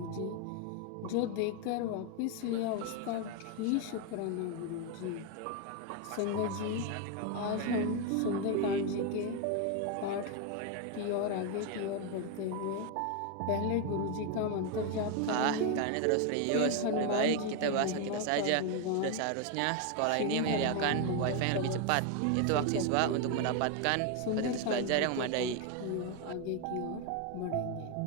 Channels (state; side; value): different; both; correlation 0.01